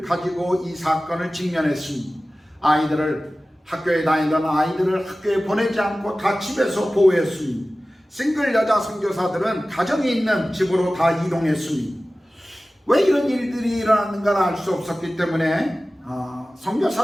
가지고 이 사건을 직면했습니다. 학교에 다니던 아이들을 학교에 보내지 않고 다 집에서 보호했습니다. 싱글 여자 선교사들은 가정이 있는 집으로 다 이동했습니다. 왜 이런 일들이 일어났는가를 알 수 없었기 때문에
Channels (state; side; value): normal; both; correlation 0.96